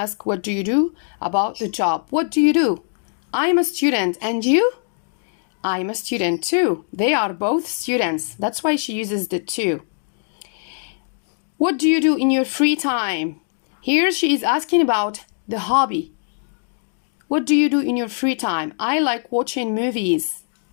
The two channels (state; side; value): silent; right; digital silence